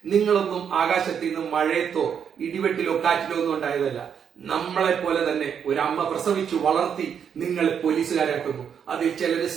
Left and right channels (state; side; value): quieter; left; 7.7 dB